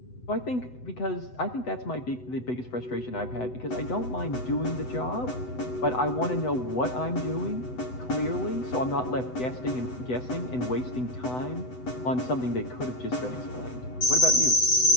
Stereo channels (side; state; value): right; late; 8.0 ms